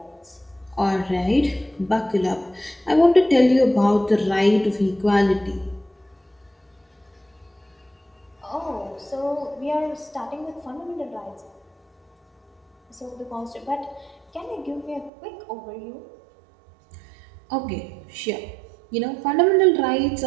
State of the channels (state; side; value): drops out; left; at 15.1 s